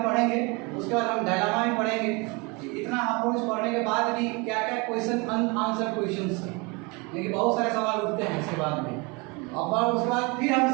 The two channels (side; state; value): left; quieter; 28.3 dB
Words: पढ़ेंगे, उसके बाद हम डायलामा भी पढ़ेंगे कि इतना अप्रोच पढ़ने के बाद भी क्या क्या क्वेश्चन अनआंसर्ड क्वेश्चंस हैं, लेकिन बहुत सारे सवाल उठते हैं इसके बाद में। और उसके बाद फिर हम